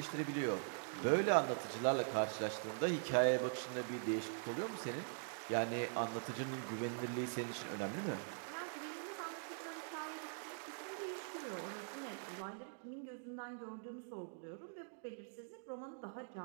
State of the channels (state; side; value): silent; left; digital silence